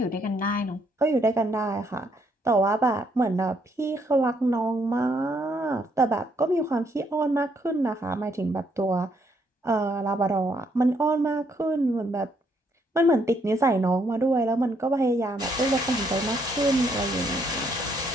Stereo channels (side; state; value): both; normal; correlation 0.72